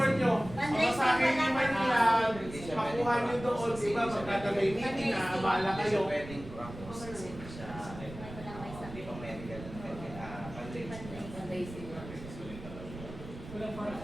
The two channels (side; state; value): right; noise; rumble, 13 dB below the sound